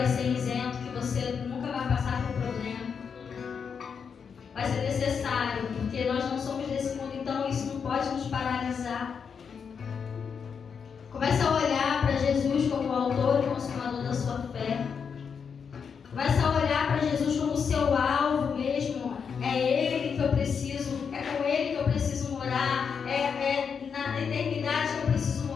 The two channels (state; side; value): quieter; right; 6.4 dB